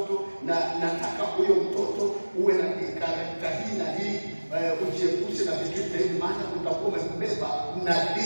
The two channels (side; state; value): both; inverted; correlation -1.00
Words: na nataka huyo mtoto uwe na karakta hii na hii, ujiepushe na vitu hivi, maana utakuwa umebeba